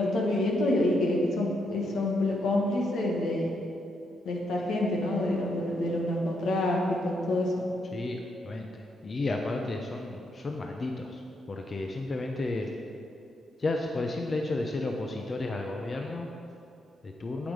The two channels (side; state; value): both; normal; correlation 0.79